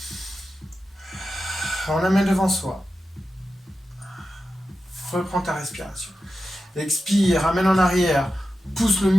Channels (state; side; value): normal; both; correlation 0.91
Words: On amène devant soi. Reprends ta respiration. Expire, amène en arrière. Pousse le